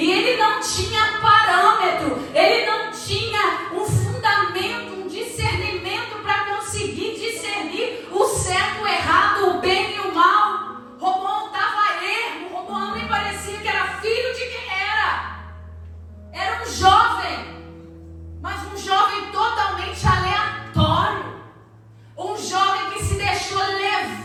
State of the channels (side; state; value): both; identical; correlation 1.00